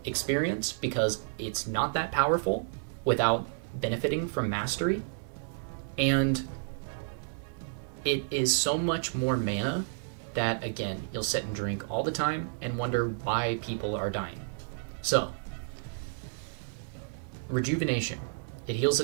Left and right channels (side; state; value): left; silent; digital silence